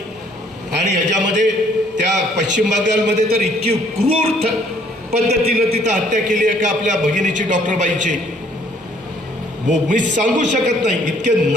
आणि ह्याच्यामध्ये त्या पश्चिम बंगालमध्ये तर इतकी क्रूर पद्धतीनं तिथं हत्या केली आहे का आपल्या भगिनीची, डॉक्टरबाईची, मी सांगू शकत नाही. इतके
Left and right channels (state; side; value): normal; both; correlation 0.62